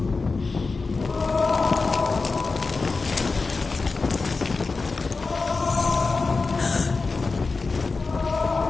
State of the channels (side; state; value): right; quieter; 4.1 dB